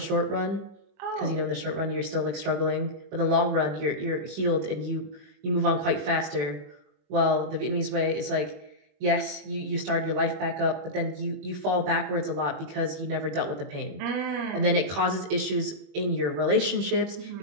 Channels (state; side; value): late; left; 21 ms